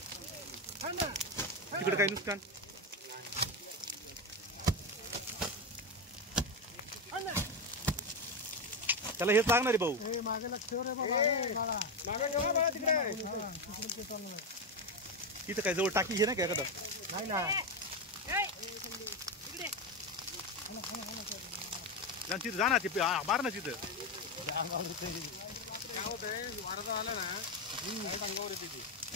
तिकडे काही नुकसान त्याला हेच लागणार आहे भाऊ तिथं काय जवळ टाकी हे ना काय एखादा तिथं जा ना ते मार ना तिथं काय होतंय वारदा आला ना अंगावर येते ती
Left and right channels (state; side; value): normal; both; correlation 0.12